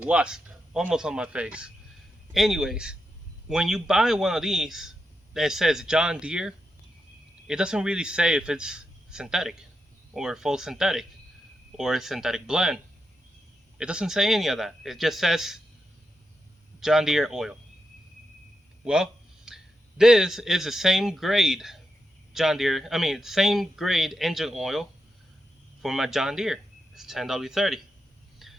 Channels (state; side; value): normal; both; correlation 0.86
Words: almost on my face. Anyways, when you buy one of these that says John Deere, it doesn't really say if it's synthetic or full synthetic or a synthetic blend. It doesn't say any of that. It just says John Deere oil. Well, this is the same grade same grade engine oil for my John Deere. It's 10W30.